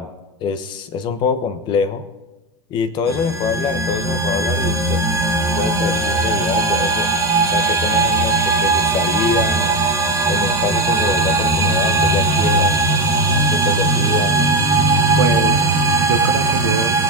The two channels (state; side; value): normal; both; correlation 0.14